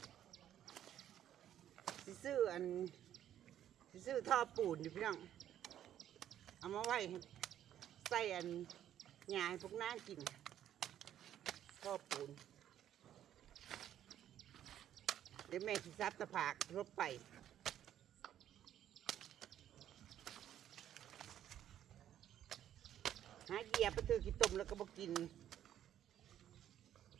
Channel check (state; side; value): quieter; left; 11.0 dB